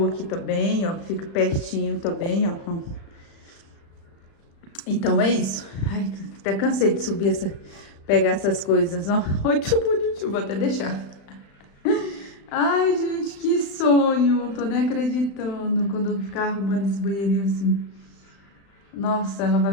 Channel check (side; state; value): right; late; 36 ms